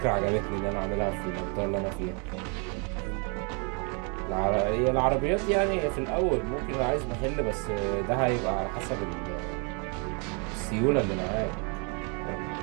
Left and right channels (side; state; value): left; quieter; 35.3 dB